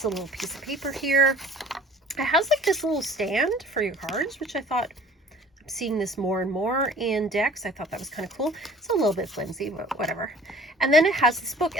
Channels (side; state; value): both; normal; correlation 0.49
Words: a little piece of paper here. It has like this little stand for your cards, which I thought, I'm seeing this more and more in decks. I thought that was kind of cool. It's a little bit flimsy, but whatever. And then it has this book,